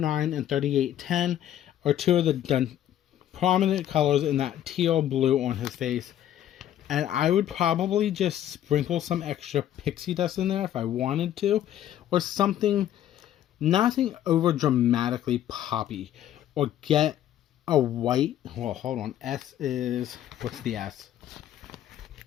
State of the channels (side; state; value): right; quieter; 11.5 dB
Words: and 3810 are two of the prominent colors in that teal blue on his face. And I would probably just sprinkle some extra pixie dust in there if I wanted to. Or something, nothing over dramatically poppy. Or get a white, well, hold on, S is, what's the S?